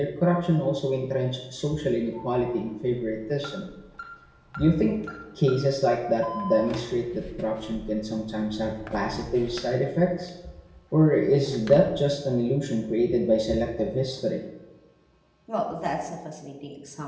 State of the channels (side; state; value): both; identical; correlation 1.00